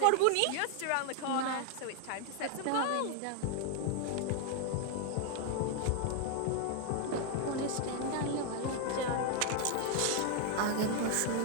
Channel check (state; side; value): different; both; correlation 0.00